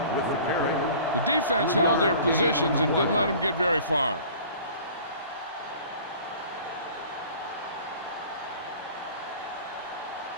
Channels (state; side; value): inverted; both; correlation -0.46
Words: with the carry. The defense held their positions and didn't let them get very far.